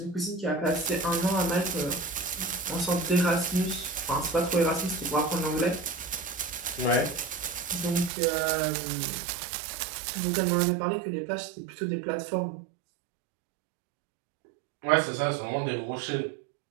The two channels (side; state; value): left; drops out; at 8.1 s